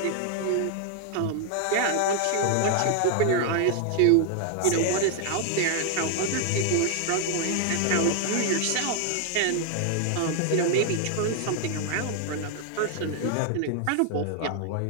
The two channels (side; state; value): both; different; correlation 0.00